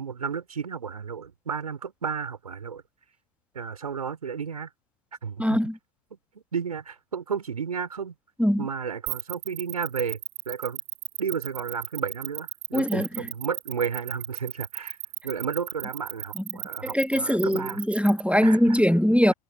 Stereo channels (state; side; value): normal; both; correlation 0.64